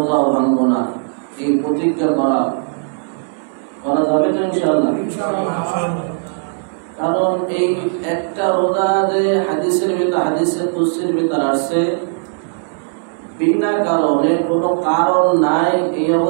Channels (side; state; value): left; silent; digital silence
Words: ভাঙবো না, এই প্রতিজ্ঞা করা যাবে তো ইনশাআল্লাহ। কারণ এই একটা রোজা যে হাদিসের কুদসির ভিতর আসছে, বিনা কারণে কোনো কারণ নাই, এই